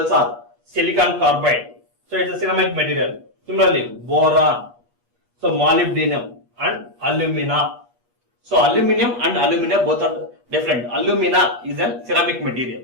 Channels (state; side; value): late; left; 8.3 ms